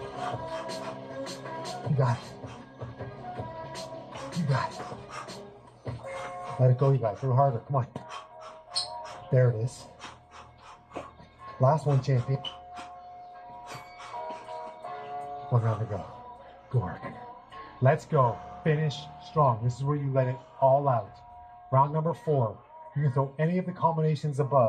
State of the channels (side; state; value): both; identical; correlation 1.00